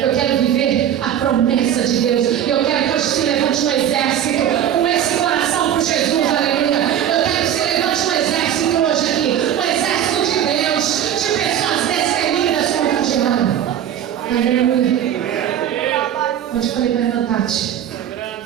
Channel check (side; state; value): left; quieter; 10.1 dB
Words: quero viver a promessa de Deus. Eu quero que hoje se levante um exército com esse coração por Jesus. Aleluia. Eu quero que se levante um exército hoje aqui. Um exército de Deus, de pessoas destemidas contra o diabo. Aleluia. Onde eu falei para levantar-te.